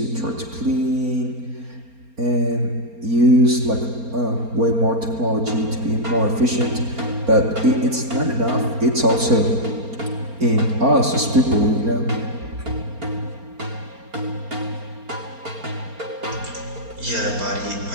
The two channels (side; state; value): left; late; 4.3 ms